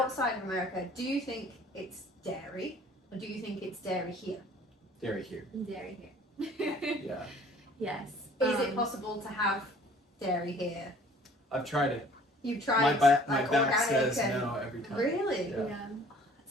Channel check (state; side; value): normal; both; correlation 0.53